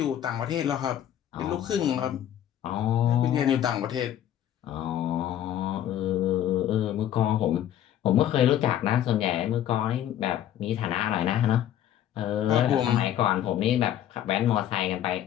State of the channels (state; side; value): quieter; right; 11.1 dB